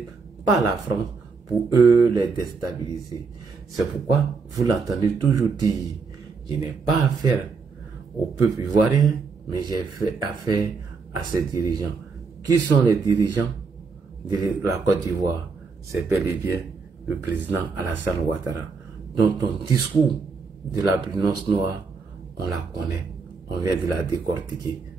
par la France pour eux les déstabiliser. C'est pourquoi vous l'entendez toujours dire, je n'ai pas affaire au peuple ivoirien, mais j'ai fait affaire à ses dirigeants. Qui sont les dirigeants de la Côte d'Ivoire? C'est bel et bien le président Alassane Ouattara. Donc ton discours de l'albinos noire, on la connaît, on vient de la décortiquer.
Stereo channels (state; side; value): quieter; left; 4.8 dB